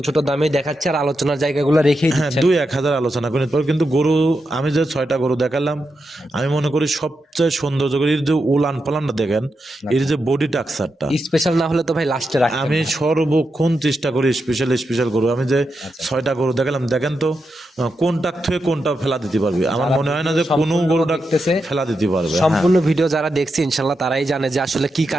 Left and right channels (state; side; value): normal; both; correlation 0.86